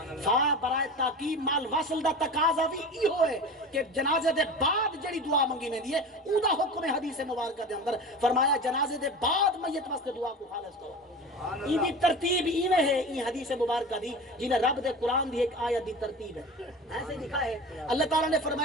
فا برائے تاکید مال وصل دا تقاضا بھی ای ہوئے کہ جنازے دے بعد جڑی دعا منگی میں دیئے او دا حکم حدیث مبارکہ دے اندر فرمایا جنازے دے بعد میت واسطے دعا کو خالص کرو ای دی ترتیب ایویں ہے ای حدیث مبارکہ دی جنہیں رب دے قرآن دی ایک آیت دی ترتیب ہے ایسے لکھا ہے اللہ تعالیٰ نے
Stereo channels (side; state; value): both; normal; correlation 0.32